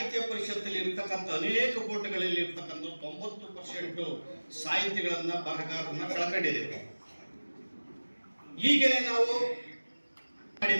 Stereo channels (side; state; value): both; inverted; correlation -1.00